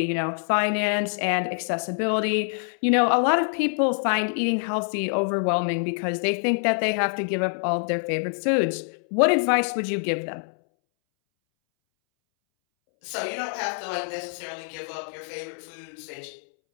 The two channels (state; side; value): silent; right; 62 dB below the other